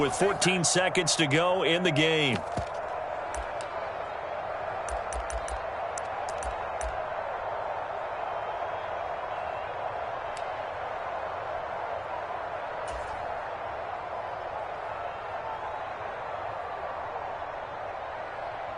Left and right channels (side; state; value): both; identical; correlation 1.00